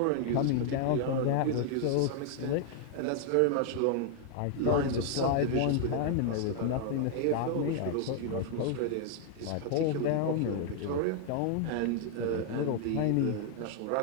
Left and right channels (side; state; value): both; different; correlation 0.00